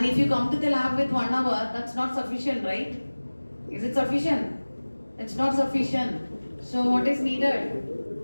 if you come to the lab with 1 hour, that's not sufficient, right? Is it sufficient? It's not sufficient. So what is needed?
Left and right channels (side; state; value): both; inverted; correlation -1.00